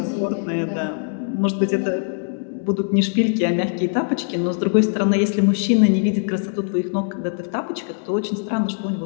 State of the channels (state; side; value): silent; right; digital silence